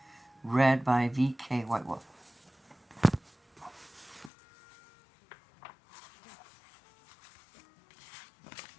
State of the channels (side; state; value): right; drops out; at 4.3 s